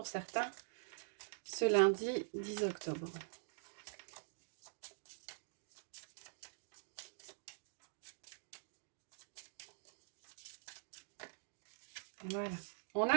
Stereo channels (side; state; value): left; silent; digital silence